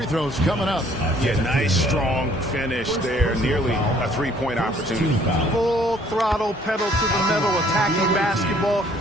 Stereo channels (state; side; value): normal; both; correlation 0.60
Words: throws coming up. Yeah, nice, strong finish there. Nearly a three-point opportunity. Full throttle, pedal to the metal, attacking basketball.